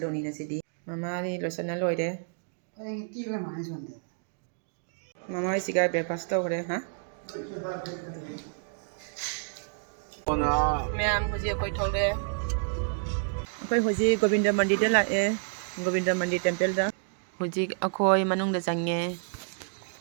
nasi di. Mama di losana loide. Cái kia là mãi rồi. Mama isiga breakfast to kore, ha? Ma'am, hoji koi thokle. Koi hoji Govinda mandi da la e. Govinda mandi temple da. Hoji akoi manung da changye.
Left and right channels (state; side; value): silent; left; digital silence